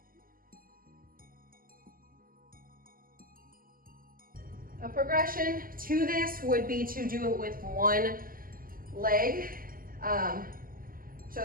A progression to this would be to do it with one leg.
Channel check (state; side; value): late; left; 0.41 ms